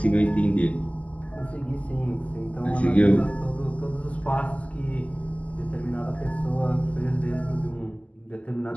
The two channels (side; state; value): right; late; 0.068 ms